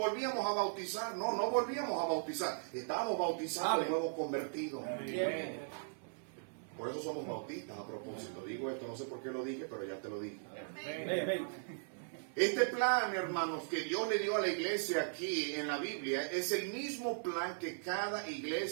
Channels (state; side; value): silent; left; digital silence